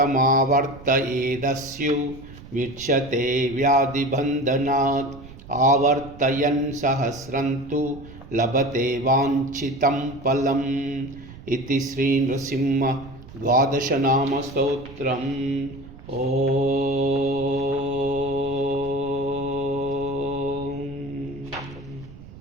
विच्यते व्याधिबन्धनात् आवर्तयन् सहस्रं तु लभते वाञ्छितं फलम् इति श्री नृसिंह द्वादश नाम स्तोत्रम्।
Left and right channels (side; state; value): right; noise; rumble, 17 dB below the sound